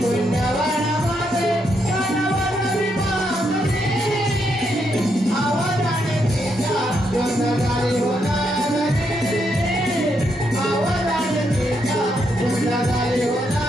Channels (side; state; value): both; normal; correlation 0.78